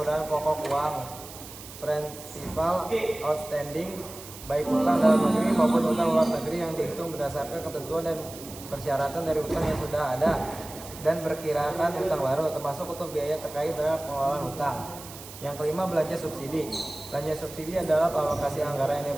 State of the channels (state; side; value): noise; right; hiss, 15 dB below the sound